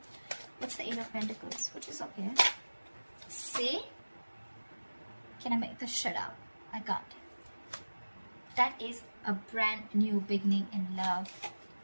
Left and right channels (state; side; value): inverted; both; correlation -1.00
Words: What's the Eight of Pentacles? Which is okay. See? Can I make this shut up? I got it. That is a brand new beginning in love.